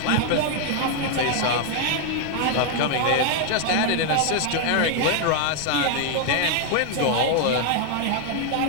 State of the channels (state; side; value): different; both; correlation 0.00